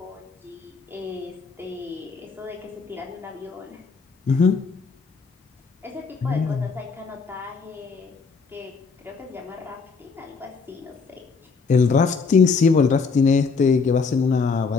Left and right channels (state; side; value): quieter; right; 4.9 dB